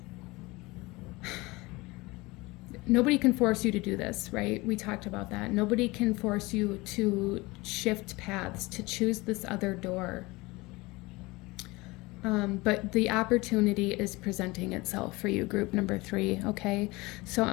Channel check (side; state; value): right; quieter; 22.7 dB